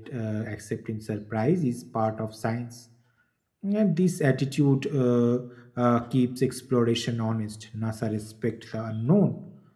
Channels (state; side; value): identical; both; correlation 1.00